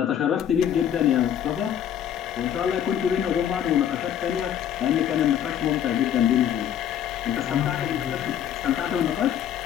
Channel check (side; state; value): right; quieter; 9.9 dB